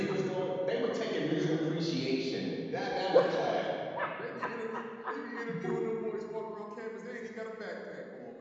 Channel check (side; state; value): both; identical; correlation 1.00